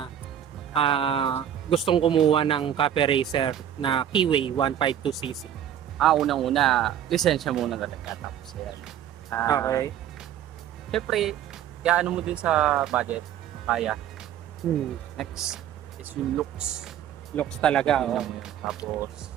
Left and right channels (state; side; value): quieter; left; 10.3 dB